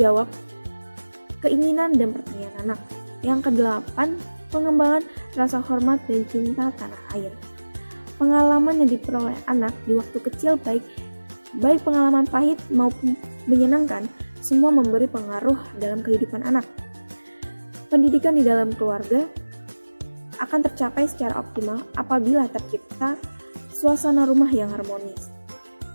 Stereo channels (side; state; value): both; inverted; correlation -1.00